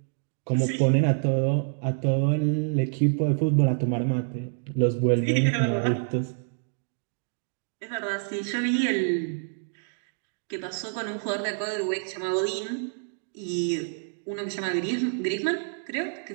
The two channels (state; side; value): silent; left; digital silence